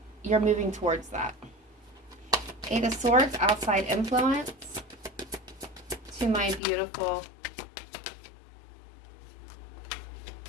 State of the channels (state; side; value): drops out; right; at 6.6 s